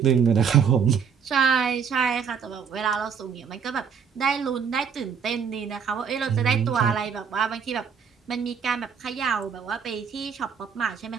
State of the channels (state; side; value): quieter; left; 6.9 dB